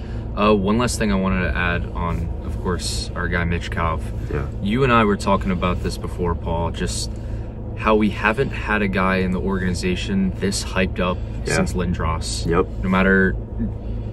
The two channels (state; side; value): identical; both; correlation 1.00